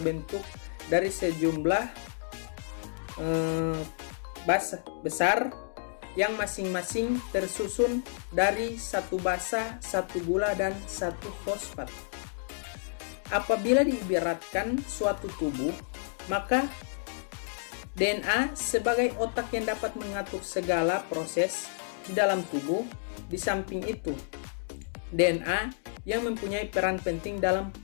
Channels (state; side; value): silent; right; digital silence